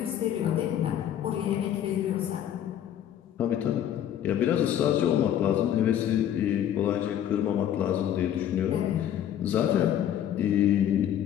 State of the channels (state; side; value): quieter; right; 10.5 dB